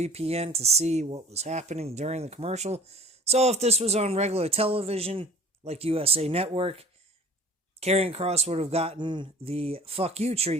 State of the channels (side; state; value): both; normal; correlation 0.47